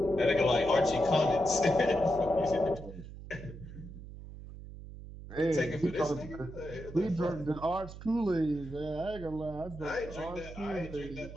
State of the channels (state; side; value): noise; right; hum, 13 dB below the sound